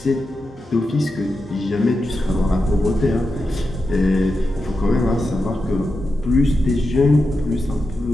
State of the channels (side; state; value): both; normal; correlation 0.89